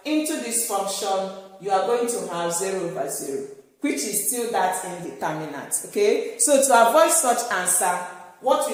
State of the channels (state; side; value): identical; both; correlation 1.00